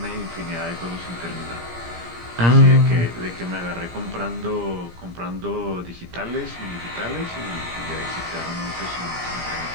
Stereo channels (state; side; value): late; left; 17 ms